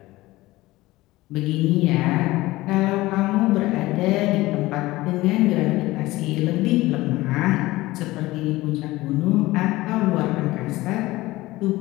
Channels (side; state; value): right; quieter; 18.7 dB